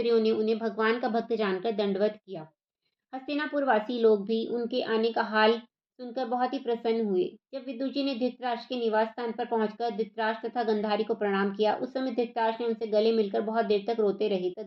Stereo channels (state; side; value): identical; both; correlation 1.00